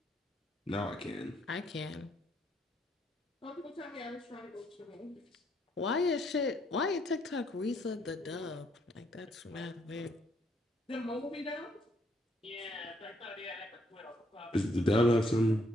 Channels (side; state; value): both; normal; correlation 0.70